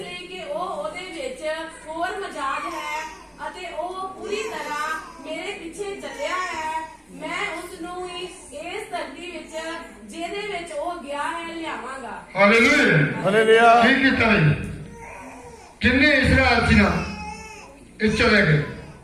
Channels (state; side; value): identical; both; correlation 1.00